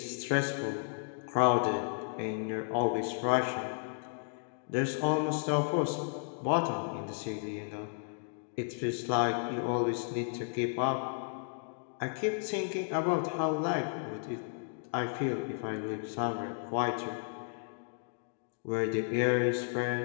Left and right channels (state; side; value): silent; right; digital silence